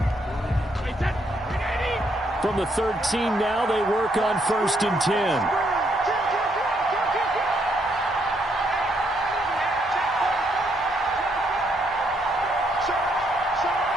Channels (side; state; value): both; normal; correlation 0.74